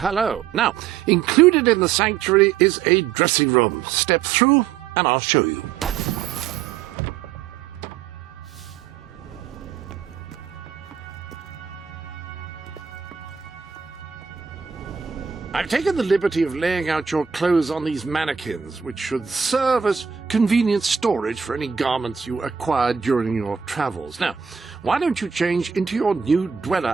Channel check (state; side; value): quieter; left; 7.4 dB